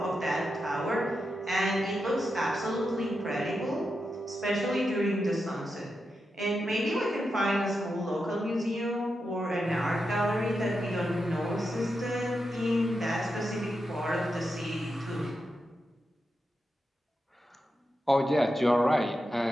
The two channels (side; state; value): both; normal; correlation 0.87